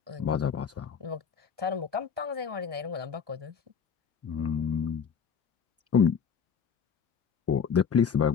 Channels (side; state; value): right; quieter; 6.9 dB